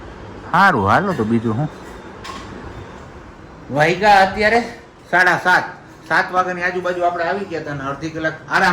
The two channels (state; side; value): identical; both; correlation 1.00